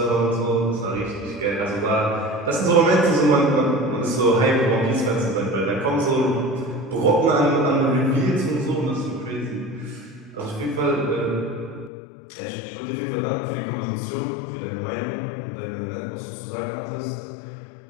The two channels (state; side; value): drops out; right; at 11.9 s